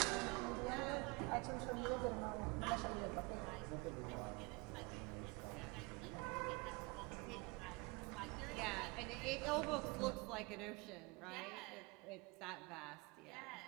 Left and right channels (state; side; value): quieter; left; 27.8 dB